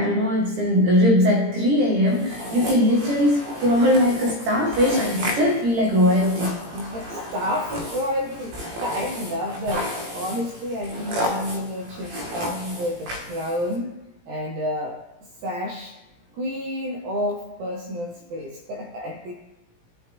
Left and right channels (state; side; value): late; left; 17 ms